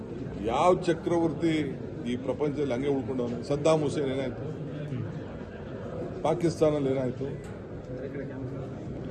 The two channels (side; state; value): both; identical; correlation 1.00